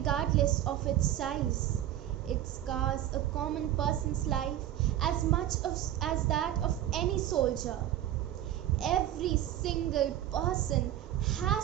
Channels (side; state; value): left; quieter; 12.1 dB